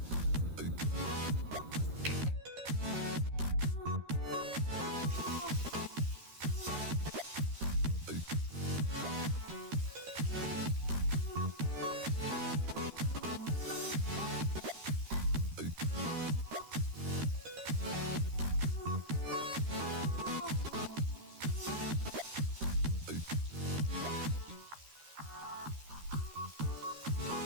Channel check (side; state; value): left; late; 13 ms